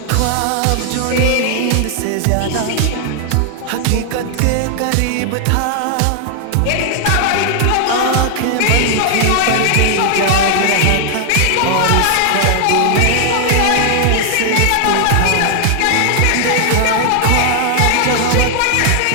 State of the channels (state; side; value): different; both; correlation 0.00